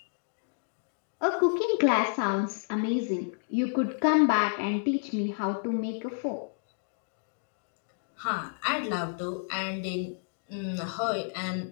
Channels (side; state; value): right; silent; digital silence